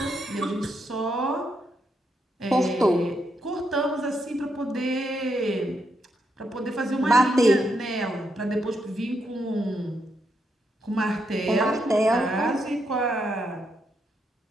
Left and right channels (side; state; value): both; normal; correlation 0.80